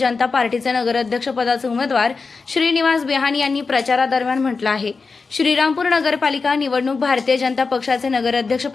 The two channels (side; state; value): right; quieter; 4.5 dB